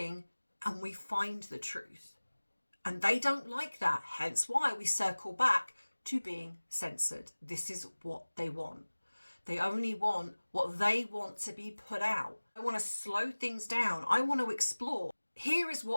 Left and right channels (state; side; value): inverted; both; correlation -1.00